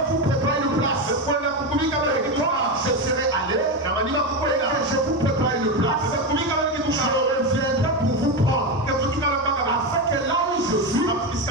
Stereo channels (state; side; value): normal; both; correlation 0.14